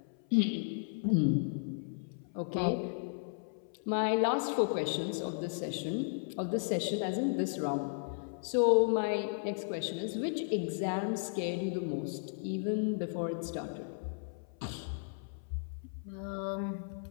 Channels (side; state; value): right; silent; 55 dB below the other